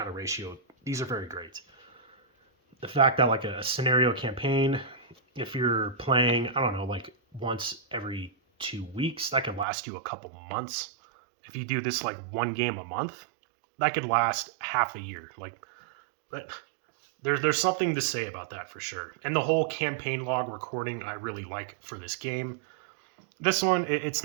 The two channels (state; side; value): drops out; left; at 9.7 s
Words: of ratio. These are very great. The fact that like a scenario campaign, if you're playing, I don't know, like once every 2 weeks, that could last you a couple months. If you do this like one game a month, that could last half a year. Like, but there's something to say about that for sure. And the whole campaign log recording I really like for this game. This one, it's